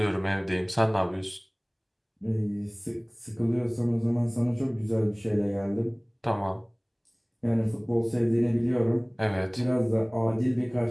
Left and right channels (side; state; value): both; identical; correlation 1.00